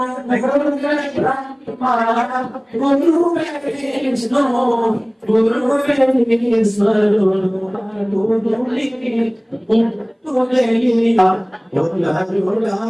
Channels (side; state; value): both; identical; correlation 1.00